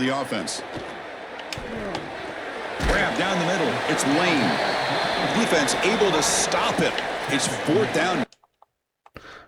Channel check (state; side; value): identical; both; correlation 1.00